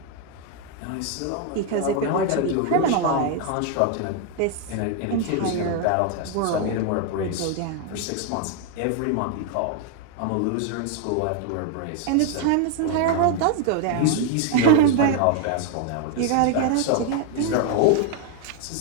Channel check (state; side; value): different; both; correlation 0.01